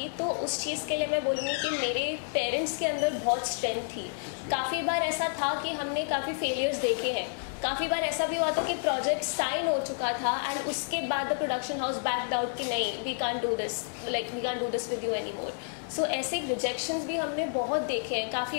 तो उस चीज़ के लिए मैं बोलूँगी कि मेरे पेरेंट्स के अंदर बहुत स्ट्रेंथ थी। काफ़ी बार ऐसा था कि हमने काफ़ी फेलियर्स देखे हैं। काफ़ी बार ऐसा भी हुआ था कि प्रोजेक्ट साइन हो चुका था एंड उसके बाद the production house backed out कि नहीं, we can't do this, like we can't do this with you any more. So ऐसे रिजेक्शंस भी हमने बहुत देखे हैं।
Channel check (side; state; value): right; silent; digital silence